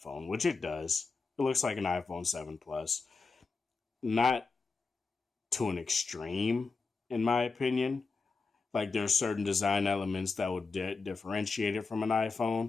which it does. It looks like an iPhone 7 Plus. Not to an extreme, in my opinion. Like, there are certain design elements that would differentiate it from an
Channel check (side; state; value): right; quieter; 4.4 dB